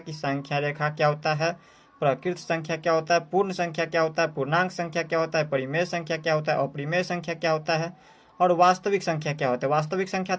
संख्या रेखा क्या होता है, प्रकृत संख्या क्या होता है, पूर्ण संख्या क्या होता है, पूर्णांक संख्या क्या होता है, परिमेय संख्या क्या होता है, अपरिमेय संख्या क्या होता है और वास्तविक संख्या क्या होता है। वास्तविक संख्या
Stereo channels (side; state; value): both; identical; correlation 1.00